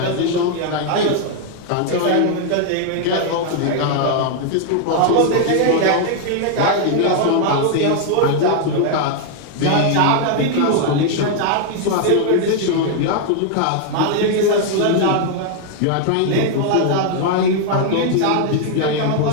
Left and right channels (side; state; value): both; different; correlation 0.00